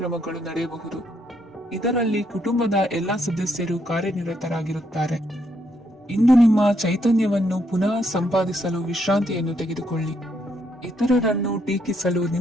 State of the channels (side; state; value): both; normal; correlation 0.75